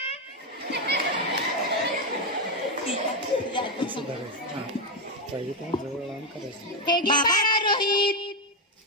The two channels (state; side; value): normal; both; correlation 0.07